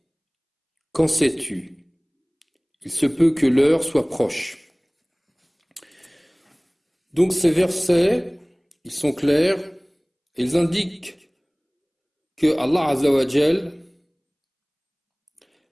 Qu'en sais-tu? Il se peut que l'heure soit proche. Donc ces versets, ils sont clairs, ils indiquent que Allah Azza wa Jal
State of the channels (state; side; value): identical; both; correlation 1.00